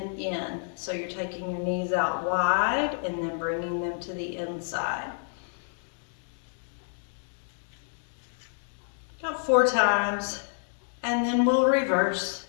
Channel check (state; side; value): silent; right; digital silence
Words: in. So you're taking your knees out wide and then bringing them to the inside. About 4 times, and then we'll reverse.